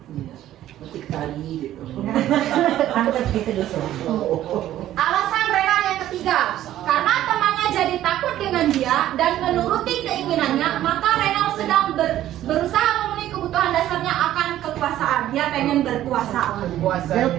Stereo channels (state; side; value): quieter; left; 13.0 dB